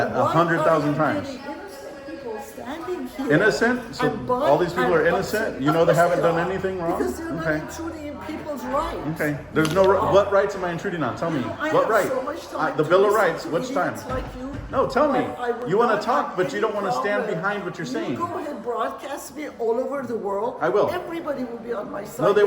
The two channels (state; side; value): identical; both; correlation 1.00